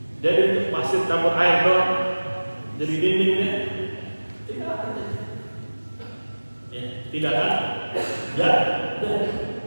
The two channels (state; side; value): inverted; both; correlation -1.00